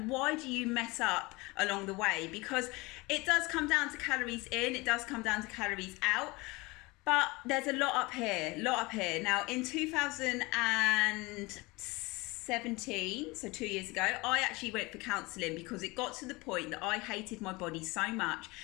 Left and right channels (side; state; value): right; quieter; 23.8 dB